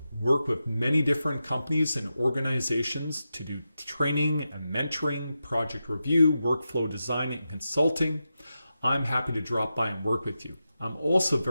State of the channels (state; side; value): inverted; both; correlation -0.90